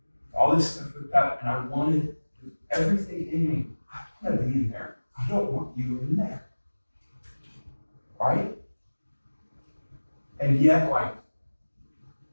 all this stuff with that, and I wanted everything in me. I want to be in there. I don't want you in there, right? And yet, like,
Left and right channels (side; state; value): both; inverted; correlation -1.00